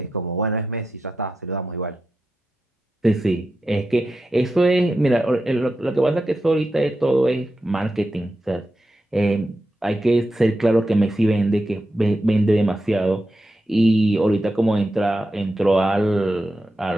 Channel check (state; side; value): normal; both; correlation 0.89